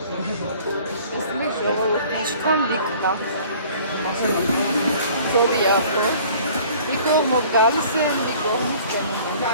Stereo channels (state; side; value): inverted; both; correlation -0.51